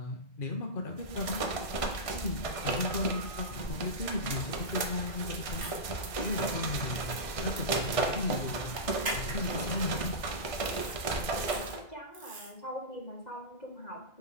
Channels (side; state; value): right; late; 1.6 ms